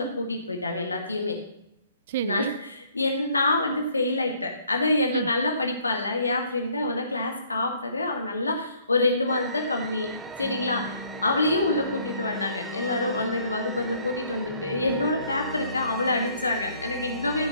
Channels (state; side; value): inverted; both; correlation -0.62